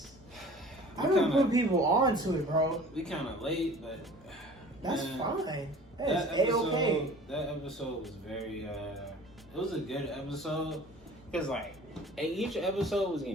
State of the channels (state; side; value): normal; both; correlation 0.45